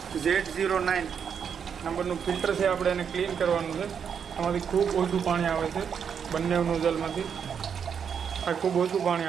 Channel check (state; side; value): quieter; left; 7.3 dB